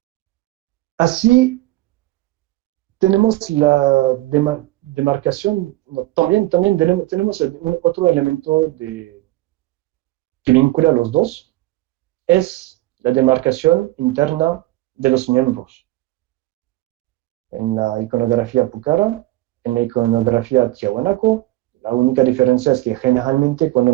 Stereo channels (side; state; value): left; quieter; 17.9 dB